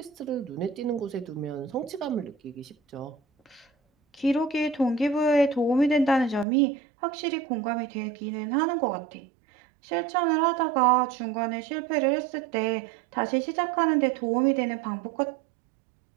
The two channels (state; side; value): drops out; left; at 6.5 s